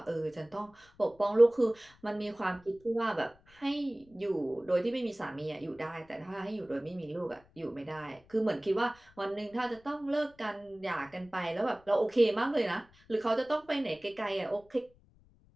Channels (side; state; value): left; noise; rumble, 29 dB below the sound